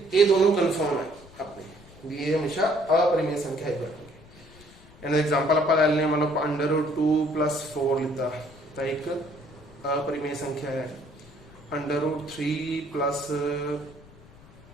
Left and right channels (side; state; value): left; noise; rumble, 23 dB below the sound